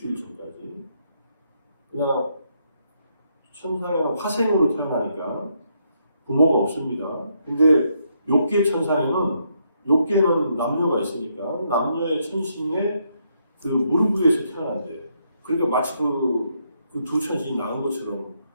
전까지. 그냥 천상에는 화생으로 태어나니까 부모가 없습니다. 근데 욕계 천상에는 욕계는 남녀가 있으니까 남녀의 천신의 그 무릎 위에서 태어난대요. 그러니까 마치 그 두 천신이 낳은 것처럼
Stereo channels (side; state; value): both; inverted; correlation -0.76